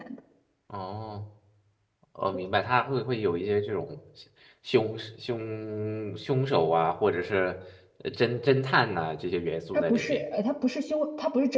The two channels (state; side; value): identical; both; correlation 1.00